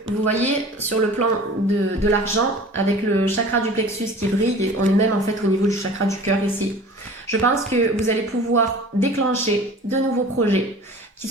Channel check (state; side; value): normal; both; correlation 0.42